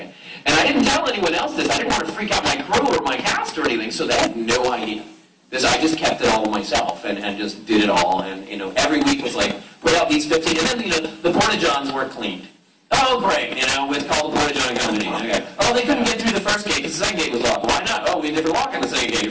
And I didn't tell anyone else this. I didn't want to freak out my crew or my cast or anything, so they had no idea. I just kept it all myself and just did it all. And, you know, every week was like, put out these 15, and then, you know, the Porta-Johns weren't cleaned. Oh, great, you know, it's called the Porta-John Company. Okay. Oh, they couldn't get through the first gate because the second gate was locked. Why not? Oh, we never lock on the second gate.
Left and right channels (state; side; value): identical; both; correlation 1.00